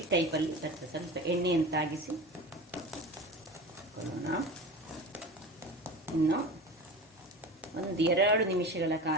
ಟೈಪಲ್ಲಿ ಬರ್ತದೆ. ಸ್ವಲ್ಪ ಎಣ್ಣೆಯನ್ನು ತಾಗಿಸಿ ಹಾಕೊಳ್ಳೋಣ. ಇನ್ನು 1-2 ನಿಮಿಷಗಳ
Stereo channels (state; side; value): normal; both; correlation 0.32